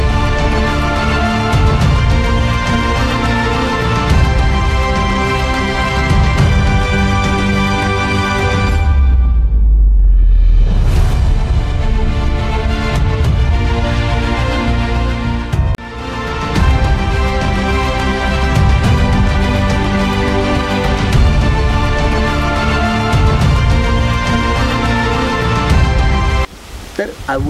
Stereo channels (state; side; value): identical; both; correlation 1.00